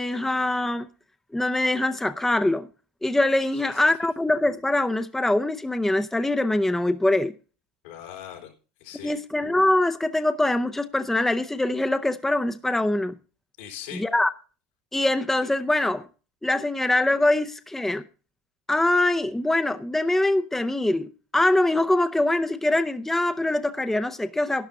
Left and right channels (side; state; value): both; normal; correlation 0.96